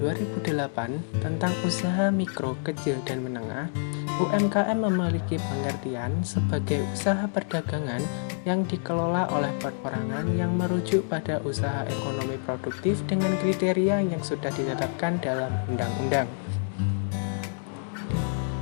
tentang usaha mikro, kecil, dan menengah, UMKM memiliki pengertian sebagai usaha perdagangan yang dikelola oleh perorangan yang merujuk pada usaha ekonomi produktif dengan kriteria yang sudah ditetapkan dalam undang-undang.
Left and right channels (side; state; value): right; silent; digital silence